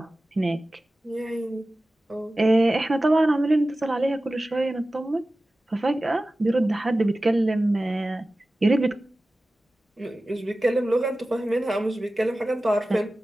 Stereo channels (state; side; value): normal; both; correlation 0.96